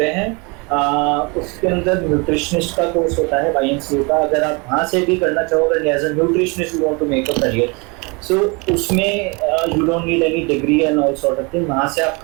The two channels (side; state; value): left; quieter; 29.5 dB